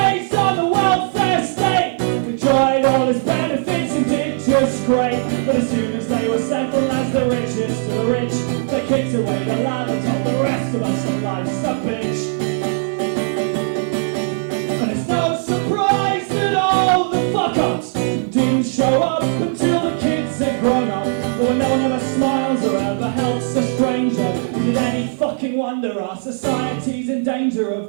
on the welfare state. They tried all its benefits and did just great. But as soon as they were settled as the richest of the rich, the kids away the ladder told the rest of us that life's a bitch. And it's no surprise that all the fuck-ups didn't show up until the kids had grown up. But when no one ever smiles or ever helps a stranger, is it any fucking wonder our society's in danger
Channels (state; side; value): silent; left; 67 dB below the other